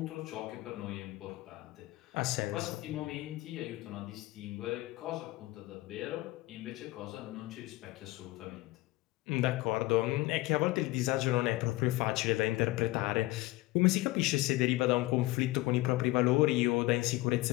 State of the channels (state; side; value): quieter; right; 19.6 dB